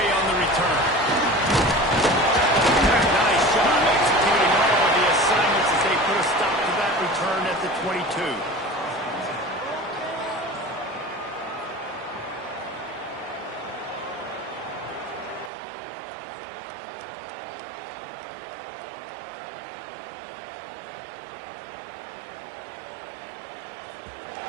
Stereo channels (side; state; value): left; drops out; at 15.5 s